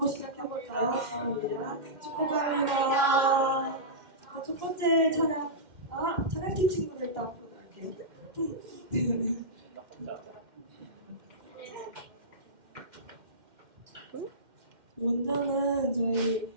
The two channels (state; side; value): late; left; 2.1 ms